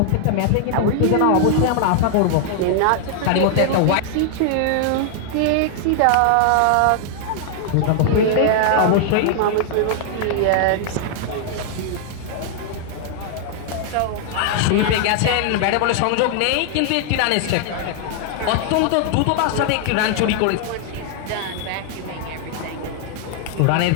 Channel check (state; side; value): different; both; correlation 0.00